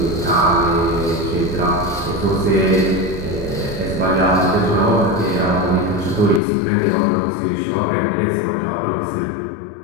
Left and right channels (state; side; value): drops out; right; at 6.4 s